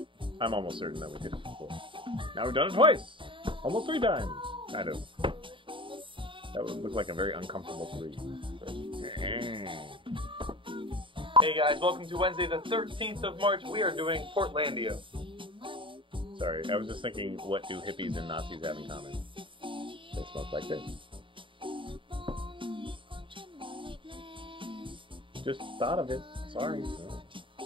I'm almost certain that we did it before. Now we've done it twice! Almost 3 times! Kind of. That would look like a very uncomfortable 3. Hey guys, welcome to Wednesday the 13th of March. We are doing Portlandia. Sorry, I was just thinking, what do hippies and Nazis have in common? They smoke like this. Just thought of it. Sorry.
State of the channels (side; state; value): left; late; 0.25 ms